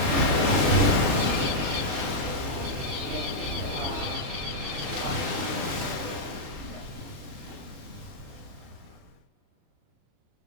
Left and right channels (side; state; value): left; late; 40 ms